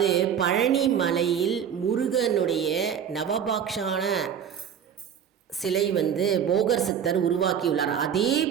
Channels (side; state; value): left; quieter; 8.3 dB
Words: பழனி மலையில் முருகனுடைய நவபாக்ஷான சிலை போகர் சித்தர் உருவாக்கியுள்ளார். அதே